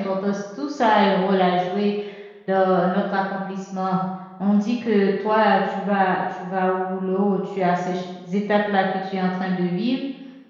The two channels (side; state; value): both; identical; correlation 1.00